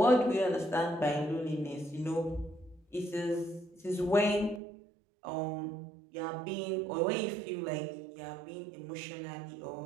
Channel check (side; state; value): left; drops out; at 4.6 s